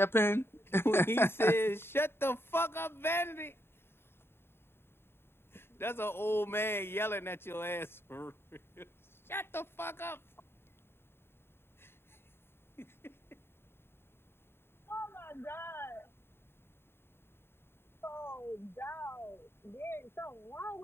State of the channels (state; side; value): late; right; 0.11 ms